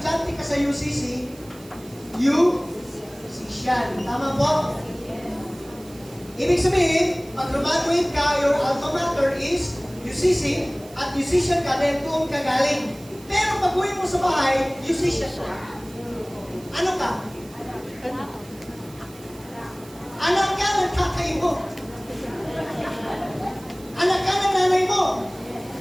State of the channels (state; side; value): noise; right; hiss, 22 dB below the sound